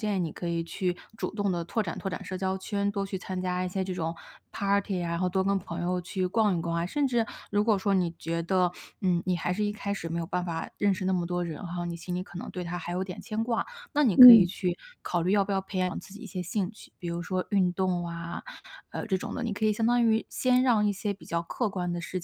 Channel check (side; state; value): both; identical; correlation 1.00